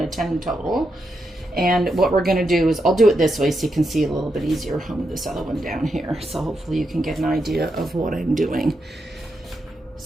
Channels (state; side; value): normal; both; correlation 0.84